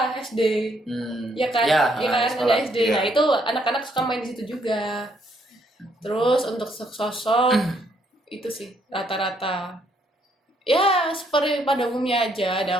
SD. Ya kan? Ya, Ya kan, sekolah. ada SD. Iya. Nah, itu anak-anak suka main di situ juga. Terus untuk sosok itu sih rata-rata ya seperti pada umumnya aja, ada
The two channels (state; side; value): normal; both; correlation 0.70